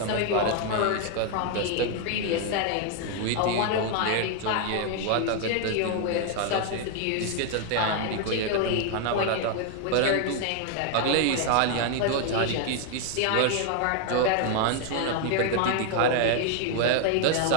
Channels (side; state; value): both; different; correlation 0.00